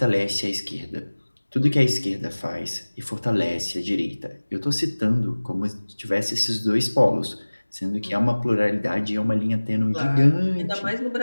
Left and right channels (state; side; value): inverted; both; correlation -1.00